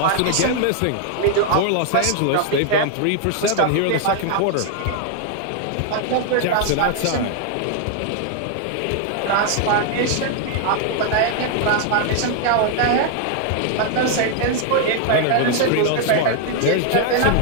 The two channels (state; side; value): different; both; correlation 0.00